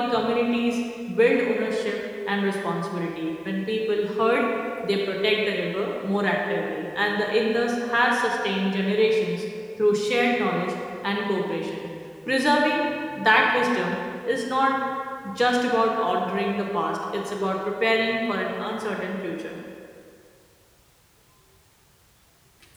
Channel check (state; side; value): identical; both; correlation 1.00